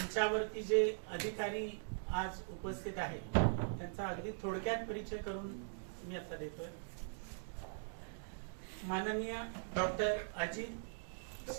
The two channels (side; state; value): left; silent; digital silence